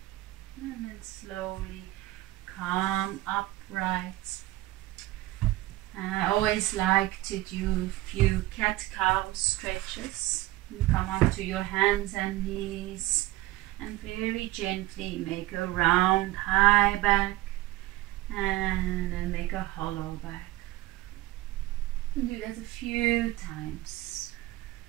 And then slowly come upright. I always like to do a few cat-cow stretches. You come onto your hands and knees and very gently make a round high back and then make a hollow back. And do that a few times.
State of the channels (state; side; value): quieter; left; 17.9 dB